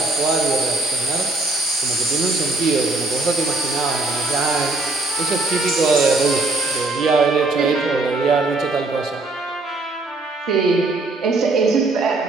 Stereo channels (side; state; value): left; quieter; 3.2 dB